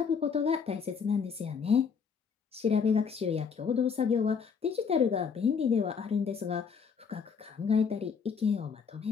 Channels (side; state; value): right; quieter; 6.1 dB